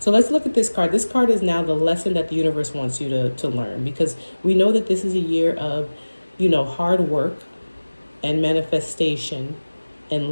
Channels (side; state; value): both; inverted; correlation -1.00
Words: let's look at this card. This card is now the lesson that the universe wants you to learn, because we know that this is a year of, hard work and manifestation and